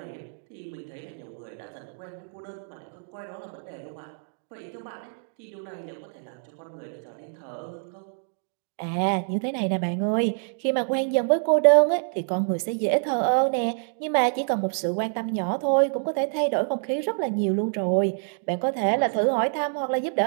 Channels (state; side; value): silent; left; digital silence